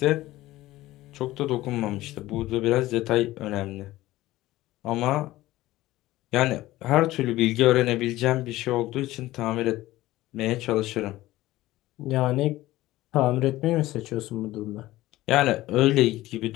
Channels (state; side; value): quieter; right; 16.8 dB